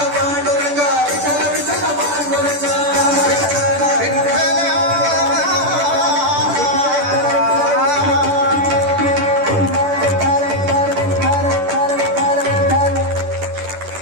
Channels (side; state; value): left; late; 10 ms